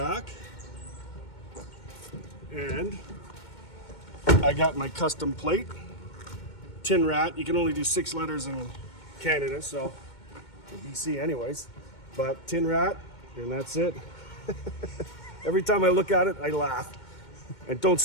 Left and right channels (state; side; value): late; right; 2.2 ms